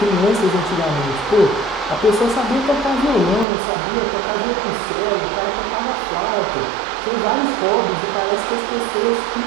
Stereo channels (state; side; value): drops out; left; at 3.5 s